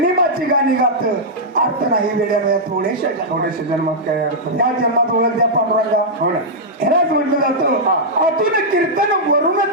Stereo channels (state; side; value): normal; both; correlation -0.08